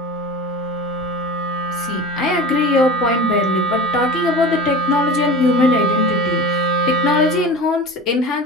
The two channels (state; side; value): normal; both; correlation 0.33